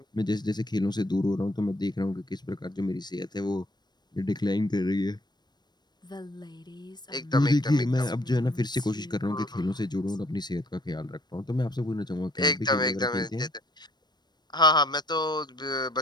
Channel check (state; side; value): late; right; 0.21 ms